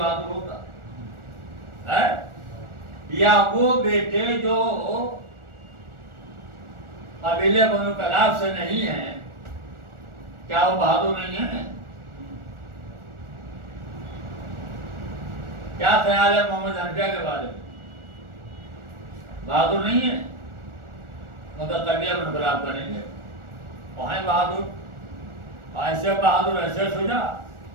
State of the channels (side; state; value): left; late; 1.4 ms